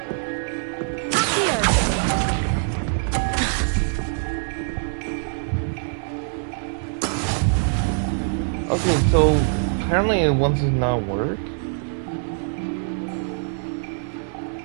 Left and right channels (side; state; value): left; silent; 63 dB below the other